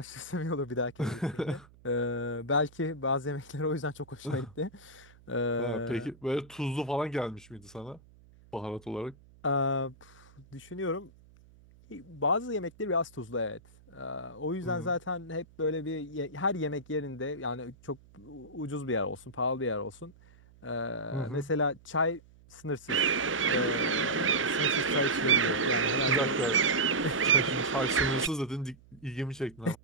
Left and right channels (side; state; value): right; noise; hum, 25 dB below the sound